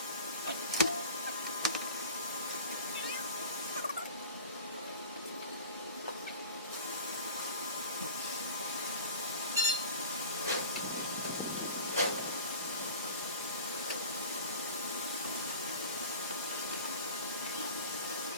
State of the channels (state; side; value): inverted; both; correlation -0.37